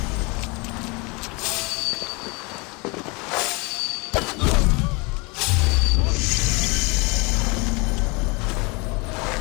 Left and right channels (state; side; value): quieter; right; 28.5 dB